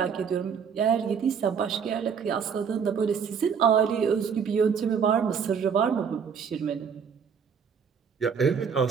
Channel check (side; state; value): left; quieter; 6.8 dB